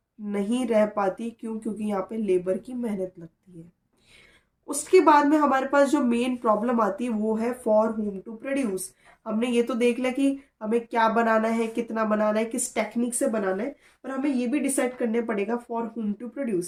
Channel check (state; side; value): identical; both; correlation 1.00